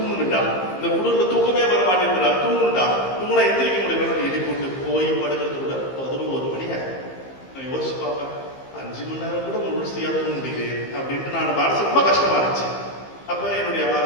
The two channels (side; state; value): right; late; 15 ms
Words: இந்த குடும்பத்துல தூக்கமே வர மாட்டேங்கிறா, தூங்குனுட்டா, தூங்குனா எந்திரிக்க முடியல, எழுதி போட்டு போய் படுக்கிறது கூட 11 மணி ஆகும். நான் யோசிச்சு பார்ப்பேன், 5 மணி நேரம் கூட முழுசையா தூங்க முடியுது அப்படின்ட்டு நான் மனசு ரொம்ப கஷ்டமா இருந்துச்சு. அப்ப என்னுடைய